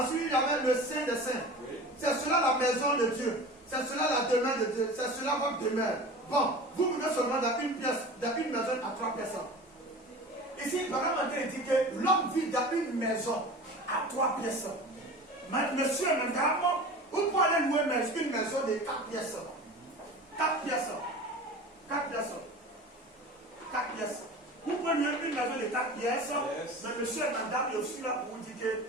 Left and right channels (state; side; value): normal; both; correlation 0.36